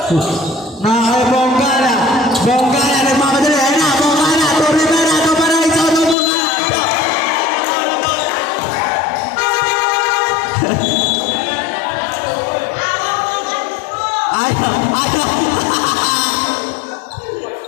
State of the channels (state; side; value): drops out; right; at 6.2 s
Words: Nakay Bongala. Bongala. Nagmamadali. Ayan na. Bongala. To Rivera. To Paraiso. To Bongala. Ayaw. Ayaw.